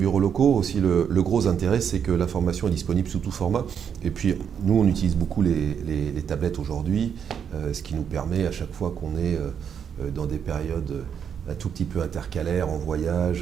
Locaux, aussi le gros intérêt, c'est que l'information est disponible sous tout format. Et puis, nous, on utilise beaucoup les tablettes aujourd'hui, ce qui nous permet, à chaque fois qu'on est dans des périodes un tout petit peu intercalaires, en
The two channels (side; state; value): left; quieter; 7.8 dB